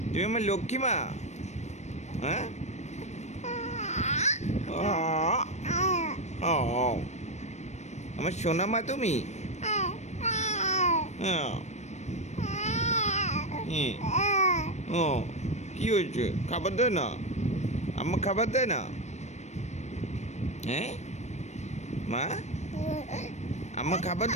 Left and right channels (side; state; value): right; late; 0.33 ms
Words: তুমি আমার লক্ষ্মী মা হ্যাঁ ও আমার সোনা মা তুমি হ্যাঁ ও কি হয়েছে খাবার দেয় না আম্মা খাবার দেয় না হ্যাঁ মা আম্মা খাবার